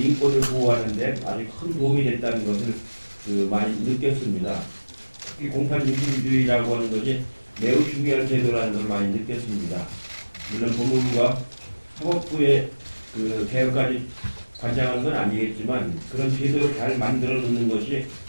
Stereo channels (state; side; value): inverted; both; correlation -1.00